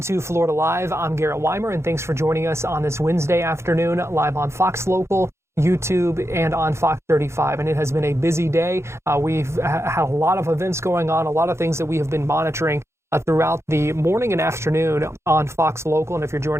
Florida Live. I'm Garrett Weimer, and thanks for joining us on this Wednesday afternoon, live on Fox Local, YouTube, and on Fox 35. And it has been a busy day. We've had a lot of events going on, a lot of things that we have been monitoring throughout the morning and afternoon on Fox Local. And if you're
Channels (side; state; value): left; late; 0.13 ms